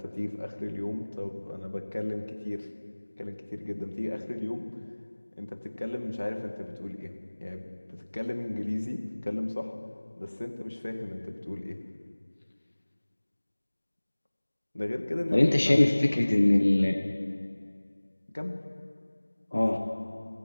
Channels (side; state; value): both; inverted; correlation -1.00